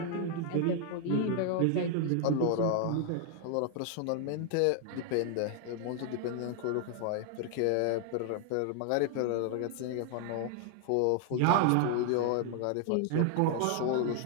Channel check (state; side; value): different; both; correlation 0.00